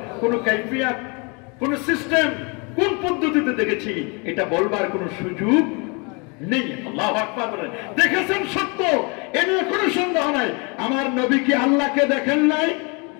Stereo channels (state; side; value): quieter; right; 31.8 dB